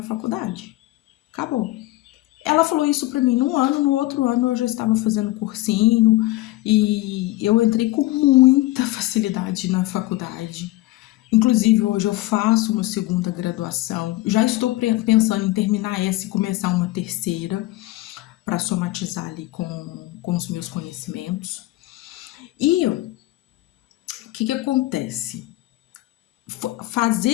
faculdade. Acabou. Ela falou isso pra mim num ano, no outro ano eu já estava fazendo cursinho e eu entrei com muita facilidade na faculdade. Inclusive, hoje eu faço uma segunda graduação. Já estou pensando em terminar essa e começar uma terceira. para somatizar ali com os meus conhecimentos. E o que acontece?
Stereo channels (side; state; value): right; quieter; 18.0 dB